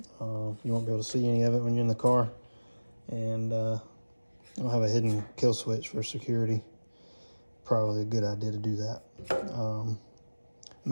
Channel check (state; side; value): inverted; both; correlation -1.00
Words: You won't be able to see any of it when you're in the car, and I'll have a hidden kill switch for security. Probably a good idea to do that.